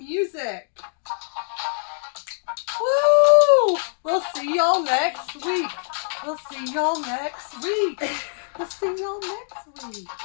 Woo! We'll see y'all next week. We'll see y'all next week. We'll see y'all next week.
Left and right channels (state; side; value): silent; right; digital silence